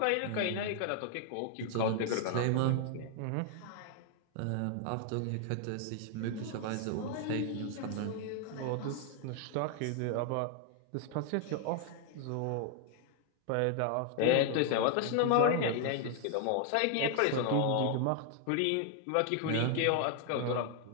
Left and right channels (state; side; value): different; both; correlation 0.00